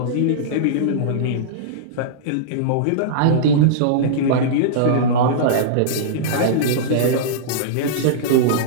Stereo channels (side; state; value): both; different; correlation -0.03